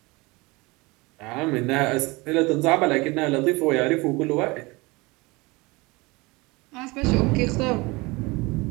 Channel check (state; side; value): quieter; left; 24.2 dB